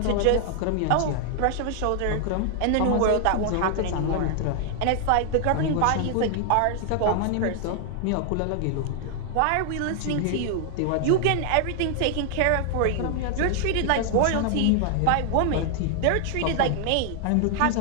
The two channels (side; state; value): both; different; correlation 0.00